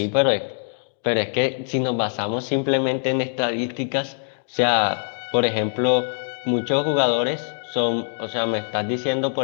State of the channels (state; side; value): silent; right; 63 dB below the other